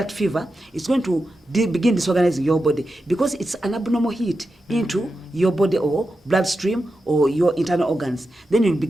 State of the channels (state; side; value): normal; both; correlation 0.90